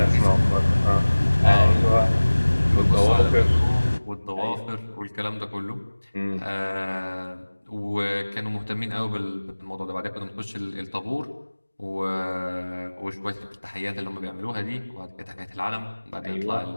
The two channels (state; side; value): inverted; both; correlation -1.00